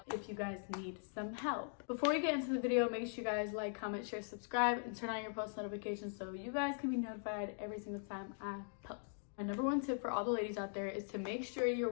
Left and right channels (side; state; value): right; silent; digital silence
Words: if you guys need some help. Before we get into the video, make sure you guys like, comment, share, subscribe, and turn on your post notifications so you guys can be notified every single time I post. My number one tip for all the ladies out there is to make sure you're